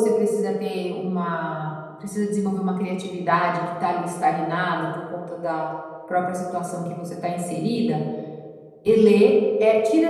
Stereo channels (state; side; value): identical; both; correlation 1.00